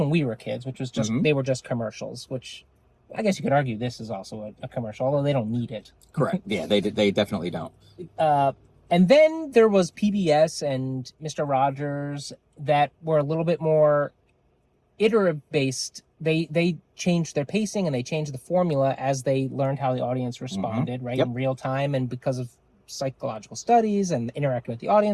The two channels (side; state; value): both; identical; correlation 1.00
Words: we were kids, which was just they were just commercials, which I guess you could argue this is also a commercial, although they don't need it. Correct. Yeah, they definitely don't. And then there was PBS and Mr. Rogers that were a little bit more iterative based. They changed their pacing and they changed the formula as they learned how the audience responded, right? In real time, and because of psychological studies and interacting with the